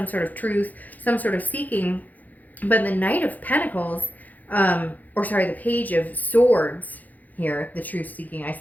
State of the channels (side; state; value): right; late; 0.081 ms